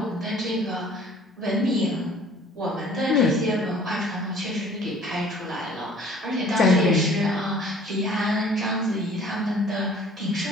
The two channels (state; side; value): normal; both; correlation 0.52